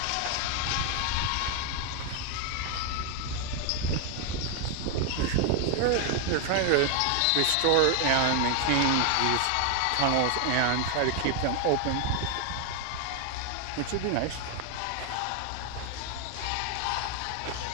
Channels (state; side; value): different; both; correlation 0.01